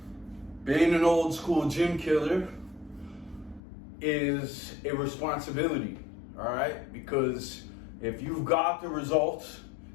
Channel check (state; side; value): drops out; right; at 3.6 s